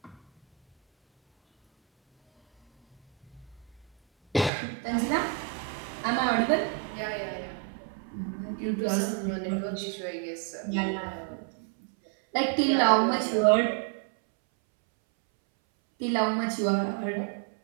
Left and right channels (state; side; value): drops out; left; at 4.5 s